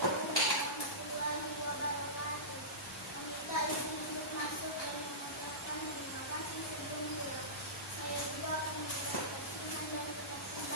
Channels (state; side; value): normal; both; correlation -0.18